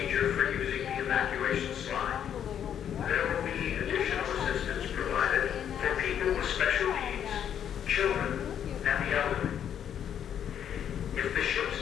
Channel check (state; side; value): quieter; right; 9.2 dB